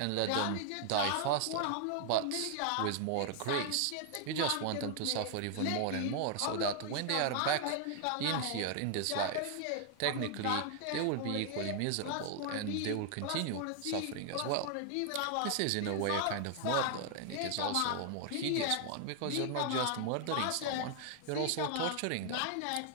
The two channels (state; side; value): different; both; correlation 0.00